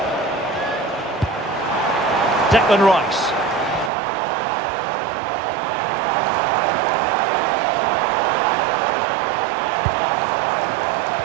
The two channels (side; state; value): left; drops out; at 3.9 s